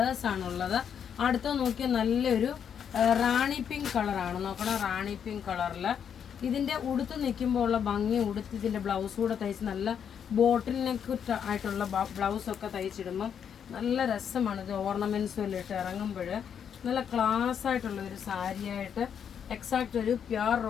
അടുത്ത നോക്കിയാൽ നല്ലൊരു റാണി പിങ്ക് കളറാണ്. നോക്കണം, റാണി പിങ്ക് കളറിൽ ഇതിൻ്റെ ഉടുത്ത് നിൽക്കുമ്പോൾ ഉള്ള ഭംഗി, ഉടുത്ത് ഇതിൻ്റെ ബ്ലൗസ് കൂടെ തയ്ച്ച് നല്ല ബോട്ടിൽ നെക്ക് ആയിട്ടുള്ള ബ്ലൗസൊക്കെ തയ്ച്ചിടുമ്പം നല്ല രസമാണ്. ഇത് ഓർണമെൻറ്റ്സും എല്ലാം ഇട്ട് ഇറങ്ങുമ്പോൾ നല്ല ക്ലാസ് ആയിട്ടുള്ള ഒരു സാരിയായിട്ട് എക്സാക്റ്റ് ഒരു പ്യുർ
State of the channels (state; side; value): quieter; right; 8.0 dB